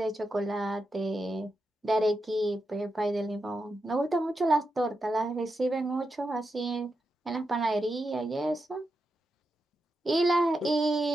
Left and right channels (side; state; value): both; normal; correlation 0.87